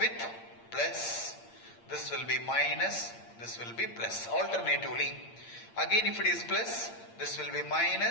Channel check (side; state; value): right; late; 8.7 ms